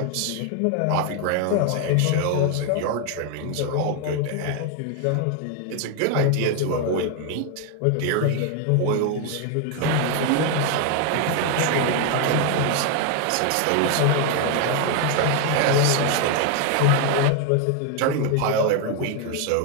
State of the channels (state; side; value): different; both; correlation 0.01